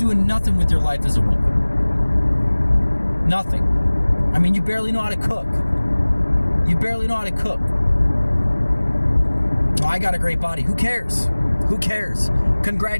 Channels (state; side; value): inverted; both; correlation -1.00